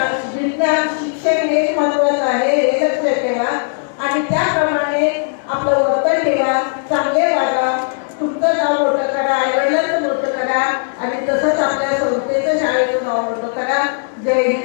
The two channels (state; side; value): silent; right; digital silence